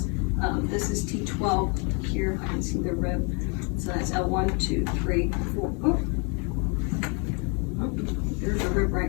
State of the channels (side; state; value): right; quieter; 34.7 dB